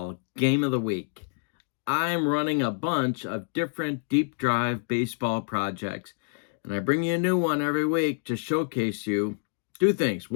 Game of the Week. I'm running a bunch of different deep drive baseball projects, and I bring you a new one every week to showcase you two things.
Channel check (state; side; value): silent; right; 60 dB below the other